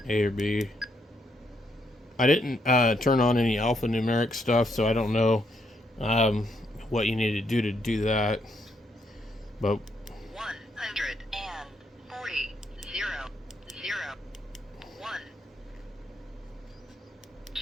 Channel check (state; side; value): normal; both; correlation 0.76